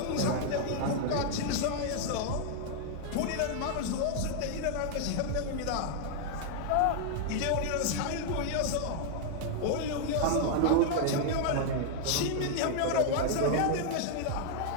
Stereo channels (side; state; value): both; different; correlation 0.00